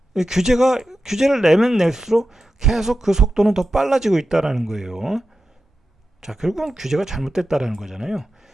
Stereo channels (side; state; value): both; normal; correlation 0.91